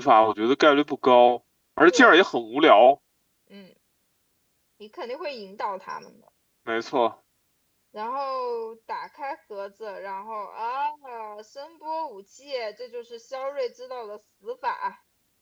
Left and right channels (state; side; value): identical; both; correlation 1.00